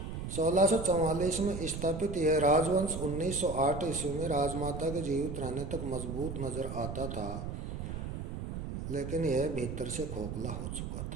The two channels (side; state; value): right; noise; rumble, 6 dB below the sound